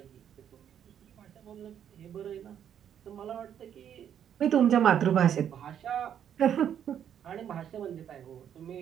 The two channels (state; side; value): quieter; left; 9.3 dB